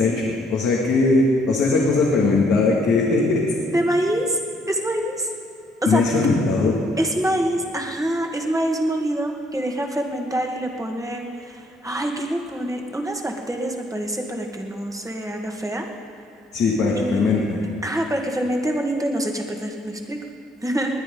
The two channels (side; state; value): both; normal; correlation 0.68